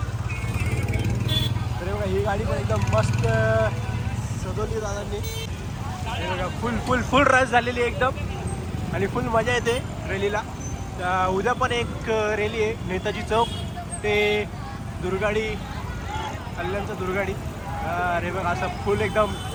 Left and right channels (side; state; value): both; identical; correlation 1.00